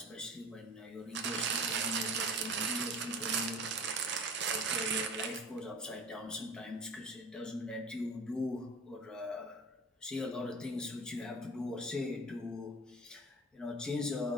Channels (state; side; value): normal; both; correlation 0.39